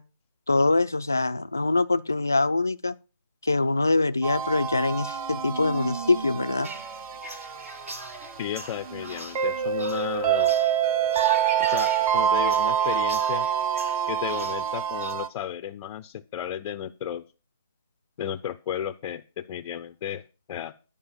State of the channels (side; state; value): both; inverted; correlation -0.37